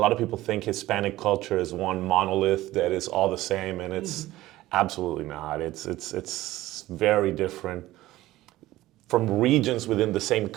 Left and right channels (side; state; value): left; quieter; 16.5 dB